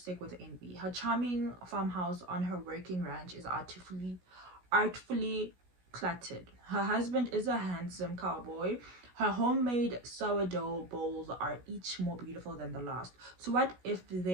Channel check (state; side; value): late; left; 16 ms